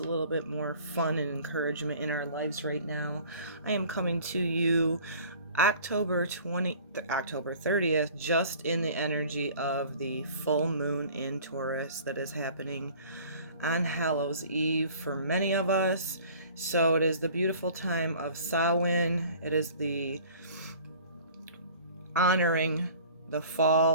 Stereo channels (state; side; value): inverted; both; correlation -0.48